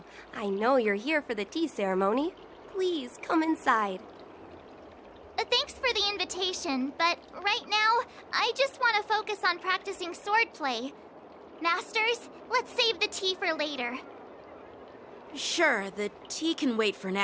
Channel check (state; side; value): identical; both; correlation 1.00